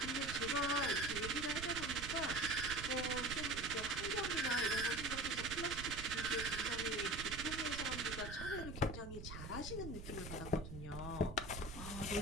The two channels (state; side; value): noise; right; rumble, 9 dB below the sound